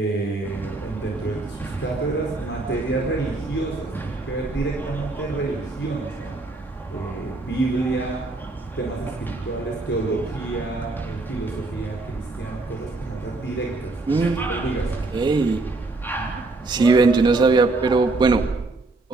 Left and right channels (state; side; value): quieter; left; 3.2 dB